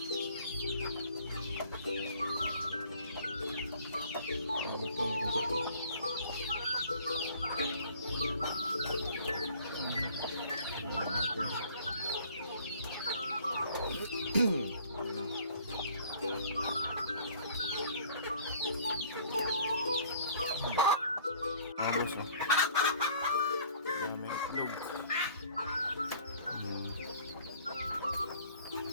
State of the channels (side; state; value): both; inverted; correlation -0.54